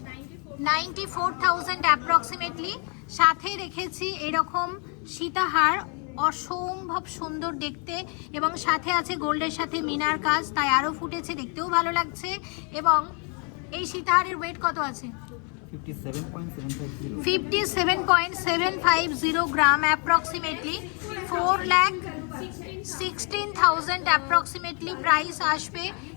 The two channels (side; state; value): right; quieter; 37.0 dB